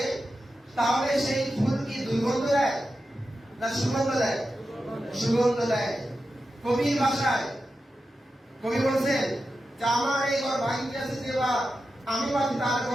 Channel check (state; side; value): normal; both; correlation 0.91